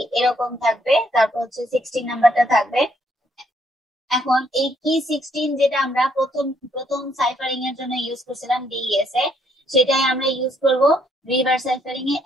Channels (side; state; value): both; normal; correlation 0.70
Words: এরকম থাকবে, তারপর হচ্ছে 16 নাম্বারটা থাকবে। এখন এই কি 16 যেটা আমরা প্রথম সাইফারিং এর জন্য ইউজ করছিলাম ডিএস এ, সেটাই আমরা ইউজ করব রিভার্স সাইফারিং এ